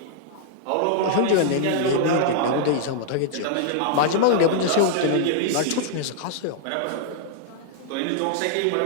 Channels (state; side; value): different; both; correlation -0.01